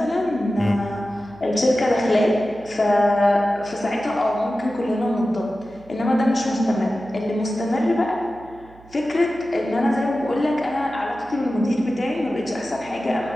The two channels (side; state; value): right; noise; hum, 24 dB below the sound